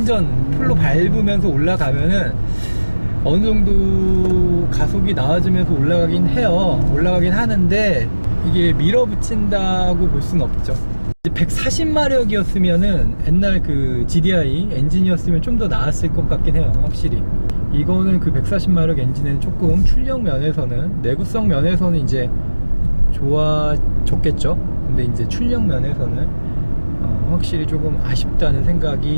풀로 밟으면서 올라가면은 어느 정도 가속이 나와주면서 올라가긴 하는데, 이게 밀어붙인다고 볼 수는 없죠. 140마력이었으면은 옛날 그 GDI 엔진이었으면 좀 더 나았을 것 같긴 해요. 확실히 이거는 그 140마력 엔진은 조금 출력 면에서는, 내구성 면에서는 이제 좋아졌겠죠. 근데 이제 출력 면에서는 확실히 조금 아쉽다는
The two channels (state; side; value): inverted; both; correlation -1.00